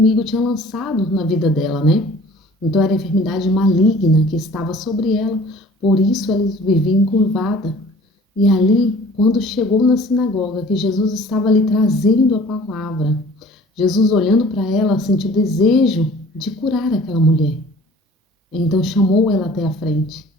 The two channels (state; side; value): normal; both; correlation 0.49